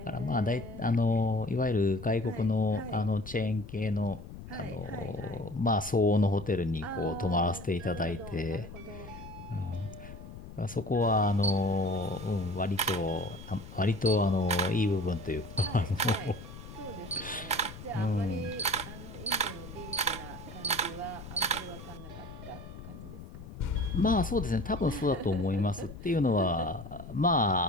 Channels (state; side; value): noise; left; rumble, 13 dB below the sound